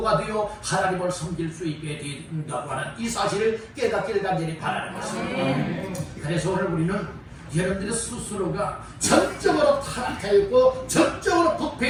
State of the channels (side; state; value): both; identical; correlation 1.00